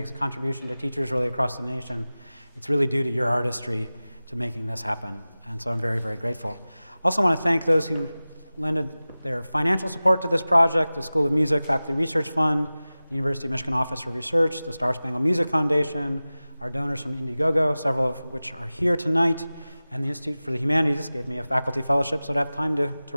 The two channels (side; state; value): both; inverted; correlation -0.97